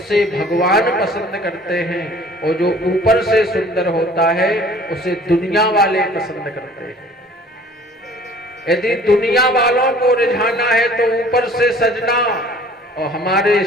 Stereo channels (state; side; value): normal; both; correlation 0.51